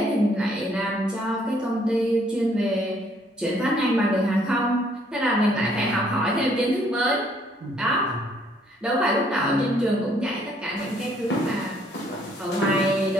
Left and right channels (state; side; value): normal; both; correlation 0.65